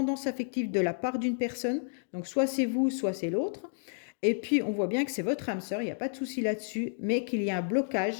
affective de la part d'une personne. Donc soit c'est vous, soit c'est l'autre. Et puis, on voit bien que c'est votre âme sœur, il n'y a pas de souci là-dessus, mais qu'il y a un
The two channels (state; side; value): silent; right; digital silence